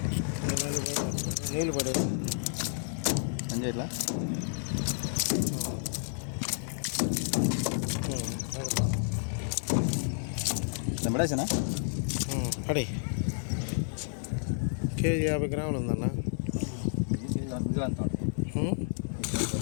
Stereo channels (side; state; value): right; silent; 57 dB below the other